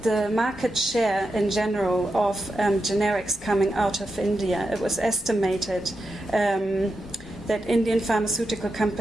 market share in general of generics coming out of India, it was estimated that Indian pharmaceutical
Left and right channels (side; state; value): both; normal; correlation 0.88